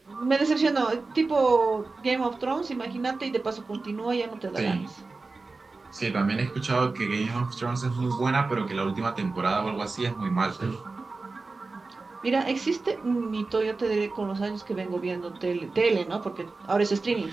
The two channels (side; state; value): left; quieter; 3.8 dB